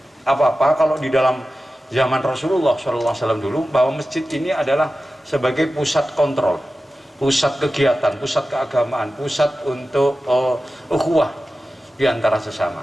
apa-apa. Kalau di dalam zaman Rasulullah SAW dulu, bahwa masjid ini adalah sebagai pusat kontrol, pusat kegiatan, pusat keagamaan, pusat untuk ukhuwah di antara sesama.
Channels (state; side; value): normal; both; correlation 0.94